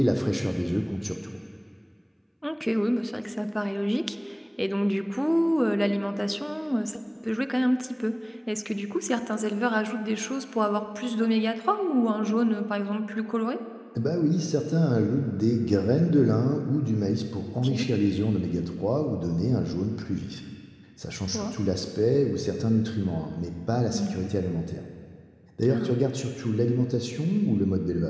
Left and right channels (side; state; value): both; identical; correlation 1.00